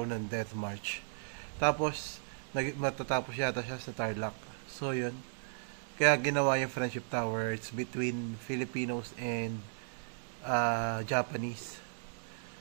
ng Death March. Tapos, matatapos yata siya sa Tarlac. So, yun. Kaya ginawa yung Friendship Tower. It's between Filipinos and Japanese.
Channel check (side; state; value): left; silent; digital silence